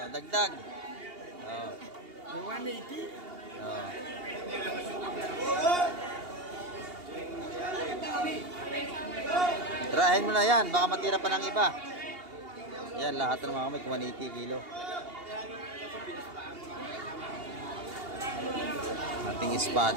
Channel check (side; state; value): left; late; 2.8 ms